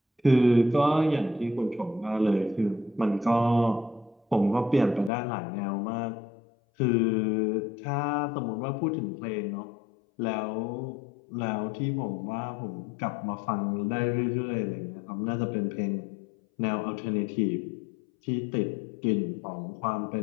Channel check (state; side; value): drops out; right; at 5.1 s